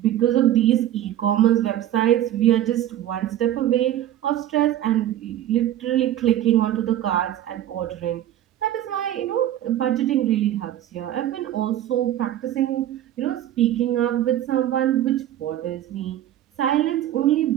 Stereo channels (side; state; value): left; quieter; 12.3 dB